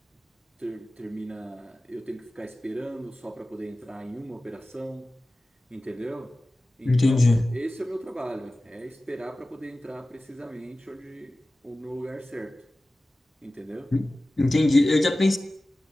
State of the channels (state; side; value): normal; both; correlation 0.96